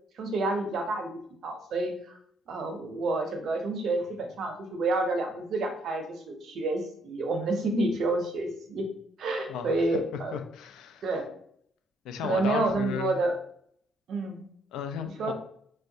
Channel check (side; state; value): both; normal; correlation 0.68